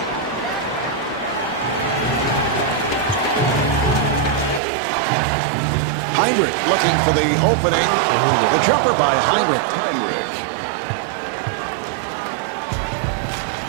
Heinrich looking for the opening. The jumper by Heinrich.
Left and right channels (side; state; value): left; drops out; at 4.6 s